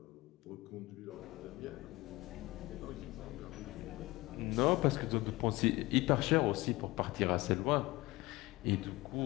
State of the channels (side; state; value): right; quieter; 20.8 dB